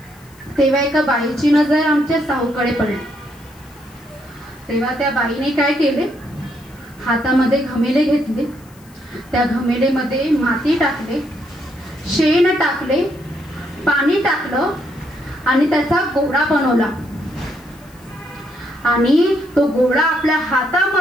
तेव्हा एका बाईची नजर आमच्या साहूकडे पडली. तेव्हा त्या बाईने काय केले, हातामध्ये घमेले घेतले, त्या घमेलेमध्ये माती टाकले, शेण टाकले, पाणी टाकलं आणि त्याचा गोळा बनवला आणि तो गोळा आपल्या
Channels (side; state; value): left; noise; hiss, 27 dB below the sound